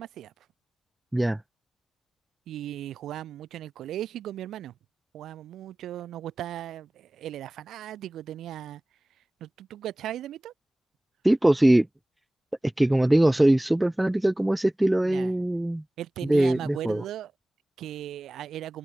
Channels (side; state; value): both; normal; correlation 0.98